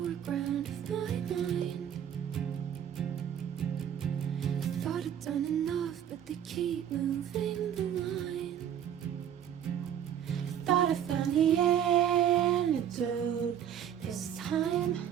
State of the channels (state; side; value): quieter; left; 9.7 dB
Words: of my mind. I thought I'd done enough, but they keep moving the line. Thought I found the antidote this time.